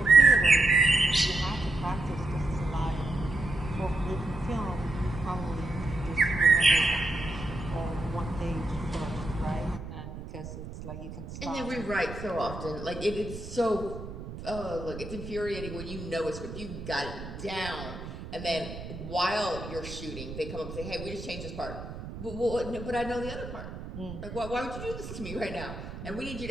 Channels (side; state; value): right; noise; rumble, 10 dB below the sound